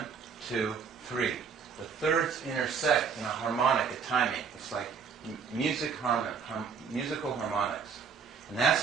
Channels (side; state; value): left; quieter; 6.2 dB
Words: 2, 3. The thirds intersect in a harmonic, a timing. It's like musical harmonics. And that's